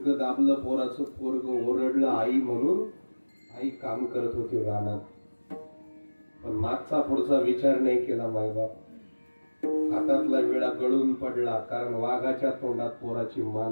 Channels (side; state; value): both; inverted; correlation -1.00